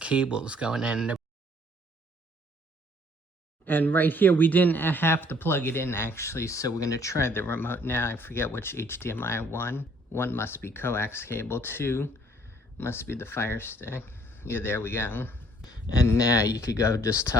going in. And right here, we didn't have to plug it in actually, so we're gonna try the remote now. I forget which HDMI one. One must be coax cable, two must be the Fire Stick. Yeah, there we go. And now you could go just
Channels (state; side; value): normal; both; correlation 0.61